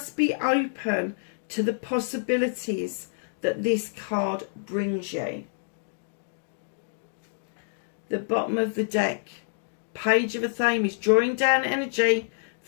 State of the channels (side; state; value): right; silent; digital silence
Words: be open to the possibilities that this card brings you. The bottom of the deck, Page of the Thames, drawing down energy